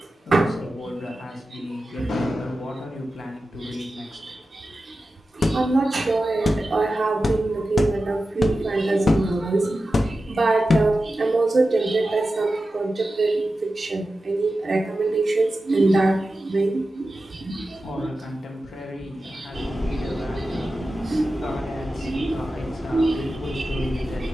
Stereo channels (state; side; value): normal; both; correlation 0.93